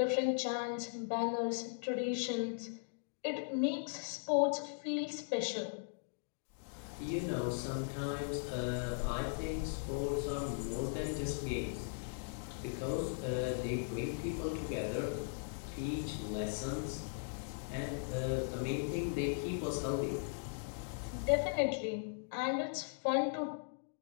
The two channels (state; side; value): silent; right; digital silence